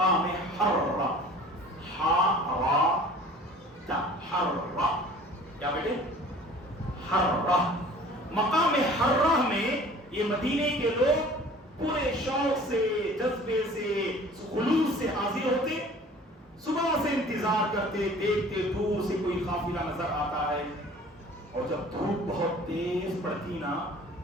حرہ, حرہ, کیا بیٹے؟ حرہ. مقام حرہ میں یہ مدینے کے لوگ پورے شوق سے, جذبے سے, خلوص سے حاضر ہوتے, صبح سے انتظار کرتے, دیکھتے دور سے کوئی قافلہ نظر آتا ہے, اور جب دھوپ بہت تیز پڑتی نا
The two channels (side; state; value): both; normal; correlation 0.47